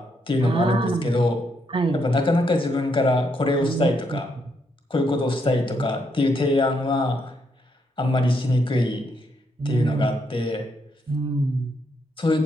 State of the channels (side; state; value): both; normal; correlation 0.77